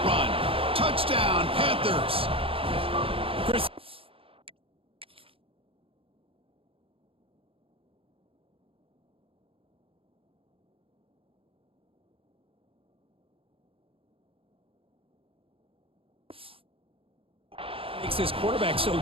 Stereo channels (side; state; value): left; late; 0.27 ms